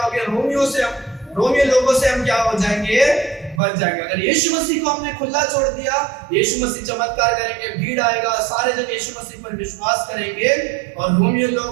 गए? रोमियो लोगों से हम क्या हो जाएंगे? बच जाएंगे। अगर यीशु मसीह को हमने खुला छोड़ दिया, यीशु मसीह चमत्कार करेंगे, भीड़ आएगा, सारे जन यीशु मसीह पर विश्वास करेंगे, और रोमियो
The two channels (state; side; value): drops out; left; at 3.6 s